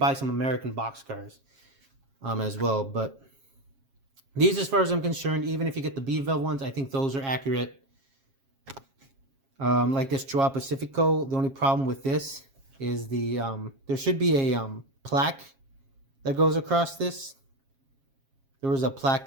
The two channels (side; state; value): left; late; 7.4 ms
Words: some American boxcars as well. But these, as far as I'm concerned, even if you get the Bev-Bel ones, I think those are accurate. Like this Joao Pacifico, the only problem with this is the there should be a plaque that goes across this. There was a plaque